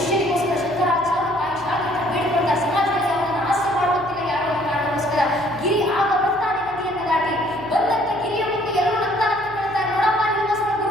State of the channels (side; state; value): right; noise; hum, 21 dB below the sound